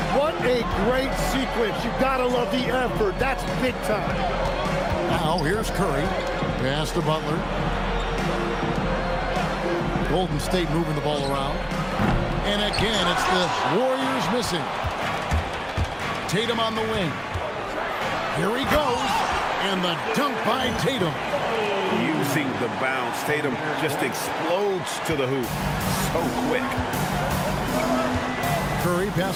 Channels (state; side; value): identical; both; correlation 1.00